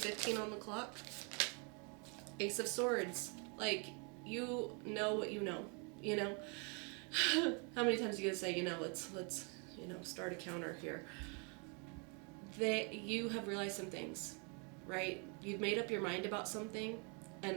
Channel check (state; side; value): quieter; left; 35.4 dB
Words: on the clock. Ace of Swords. Like, you know what you know. You know? How many times are you going to say, let's start a counter here. You have realized some things, right? You've made up your mind about something,